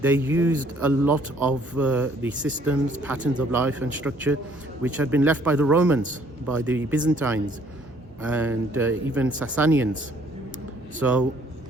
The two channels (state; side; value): normal; both; correlation 0.62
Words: they used a lot of the systems, patterns of life and structure which had been left by the Romans, by the Byzantines, and even Sassanians. So,